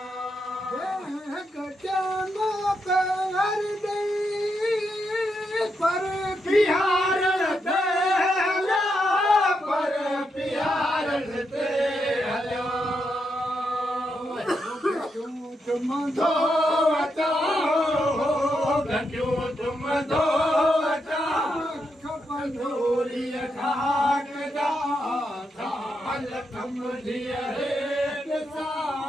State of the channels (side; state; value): both; normal; correlation 0.82